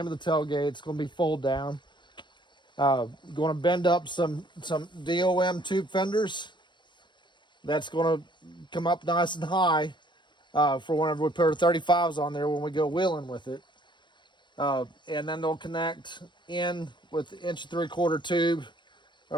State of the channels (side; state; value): right; late; 0.22 ms